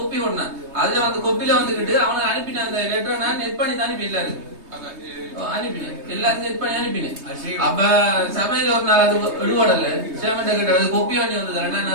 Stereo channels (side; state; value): left; late; 3.2 ms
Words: போடணும். அதுல வந்து கொப்பில வந்துகிட்டு அவனை அனுப்பின அந்த லெட்டரை நான் நெட் பண்ணி தான் அனுப்பி அனுப்பினேன், எல்லாரும் நெட் பண்ணி அனுப்பினேன். அப்ப சபையில ஒரு நாள் அது எடுபடல, சேமண்ட கிட்ட அது கொப்பி பண்ணி வந்ததுல நான்